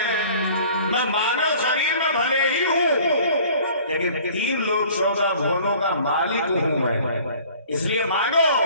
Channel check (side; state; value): both; inverted; correlation -0.50